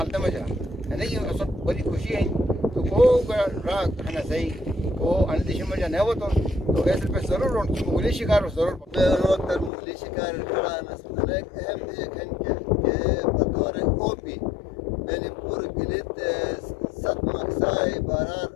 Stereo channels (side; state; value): right; drops out; at 9.7 s